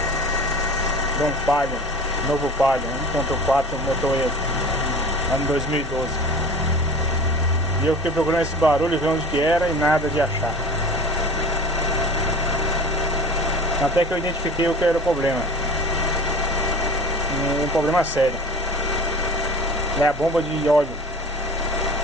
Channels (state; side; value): normal; both; correlation 0.38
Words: de um Palio, novo Palio 1.4 motor ano 2012. E eu fiquei procurando esse barulho, ver onde que era e nada de achar. Até que eu identifiquei o que era o problema. Um problema sério. É a bomba de óleo.